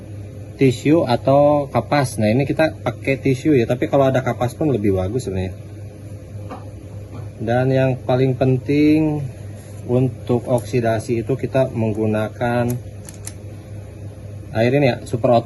tisu atau kapas. Nah, ini kita pakai tisu ya, tapi kalau ada kapas pun lebih bagus sebenarnya. Dan yang paling penting untuk oksidasi itu kita menggunakan air ini ya, Super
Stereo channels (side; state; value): both; identical; correlation 1.00